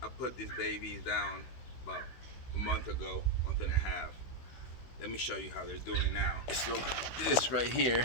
I put these babies down about a month ago, month and a half. Let me show you how they're doing now. So this right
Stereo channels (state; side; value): late; right; 16 ms